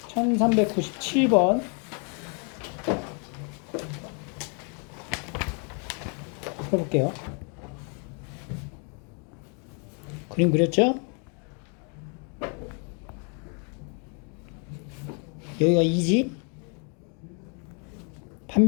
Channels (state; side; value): quieter; right; 38.2 dB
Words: 1397번 풀어볼게요. 그림 그렸죠? 여기가 2지?